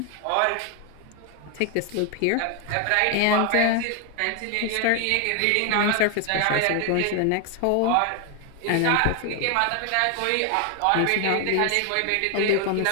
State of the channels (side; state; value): both; different; correlation 0.00